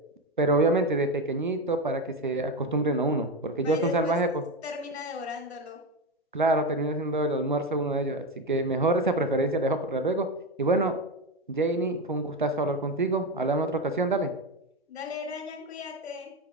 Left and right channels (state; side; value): normal; both; correlation 0.16